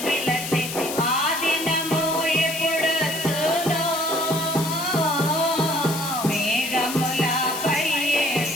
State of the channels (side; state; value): left; noise; hiss, 7 dB below the sound